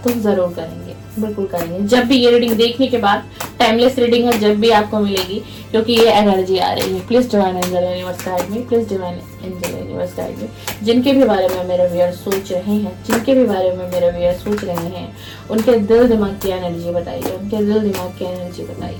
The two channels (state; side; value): identical; both; correlation 1.00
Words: तो जरूर करेंगे, बिल्कुल करेंगे। जब भी ये रीडिंग देखने के बाद, टाइमलेस रीडिंग है, जब भी आपको मिलेगी, क्योंकि ये एनर्जी आ रही है। Please divine angel universe guide me, please divine angel universe guide me. जिनके भी बारे में मेरे व्यूअर्स सोच रहे हैं, जिनके भी बारे में मेरे व्यूअर्स सोच रहे हैं, उनके दिल दिमाग की एनर्जी बताइए, उनके दिल दिमाग की एनर्जी